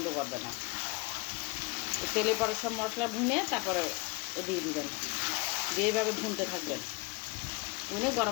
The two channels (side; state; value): right; quieter; 25.1 dB